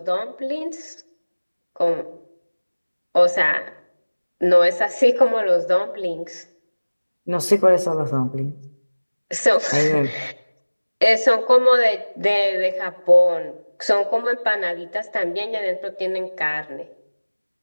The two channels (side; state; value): both; inverted; correlation -1.00